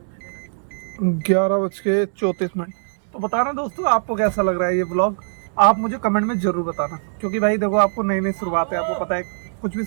11:34। तो बताना दोस्तों आपको कैसा लग रहा है ये व्लॉग, आप मुझे कमेंट में ज़रूर बताना। क्योंकि भाई देखो आपको नई नई शुरुआत है, आपको पता है कुछ भी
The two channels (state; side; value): silent; left; digital silence